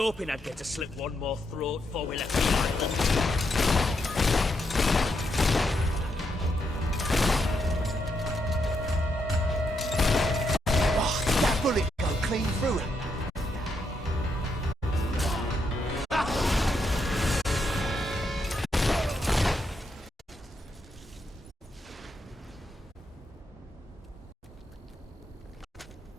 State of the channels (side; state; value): both; normal; correlation 0.80